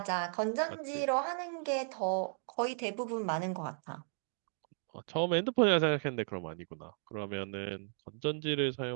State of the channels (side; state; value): left; silent; 54 dB below the other